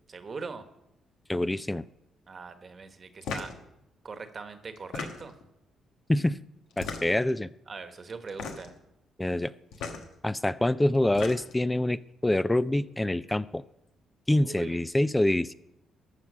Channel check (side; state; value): both; normal; correlation 0.98